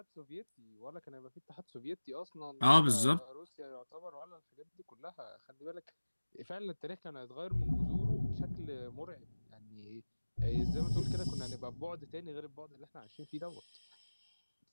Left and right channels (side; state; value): both; inverted; correlation -1.00